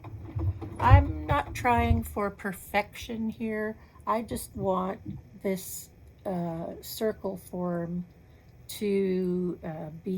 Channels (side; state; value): both; identical; correlation 1.00